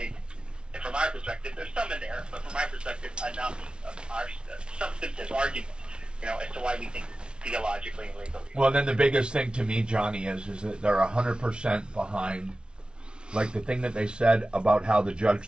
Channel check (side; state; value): left; late; 0.056 ms